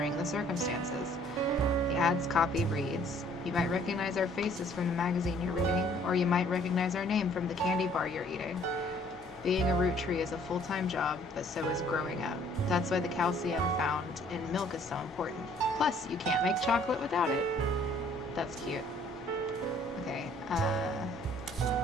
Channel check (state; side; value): normal; both; correlation 0.59